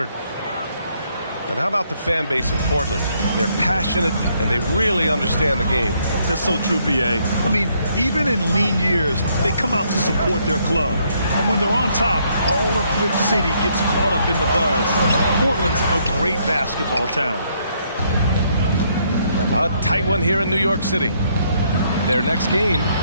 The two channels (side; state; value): both; inverted; correlation -0.71